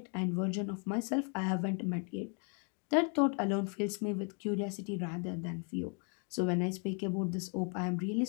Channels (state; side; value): quieter; right; 39.1 dB